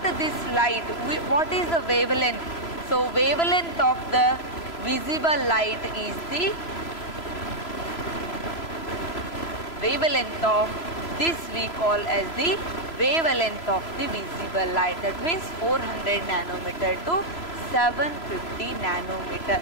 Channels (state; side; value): late; right; 3.0 ms